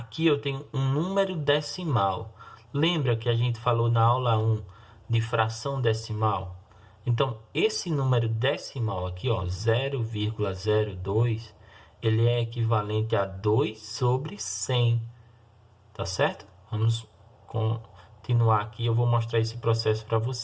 eu tenho um número decimal. Lembra que a gente falou na aula 1 de fração decimal? Então, esse número decimal aqui, ó, 0,02, ele é equivalente a 2 sobre 100. Tá certo? Vamos continuar aqui. Eu vou mostrar esse processo para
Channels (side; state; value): both; identical; correlation 1.00